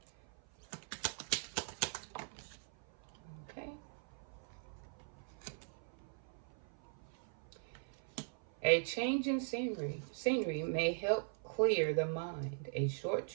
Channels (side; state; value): left; silent; 51 dB below the other